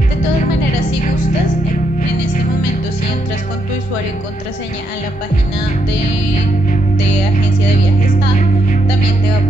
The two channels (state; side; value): late; right; 1.4 ms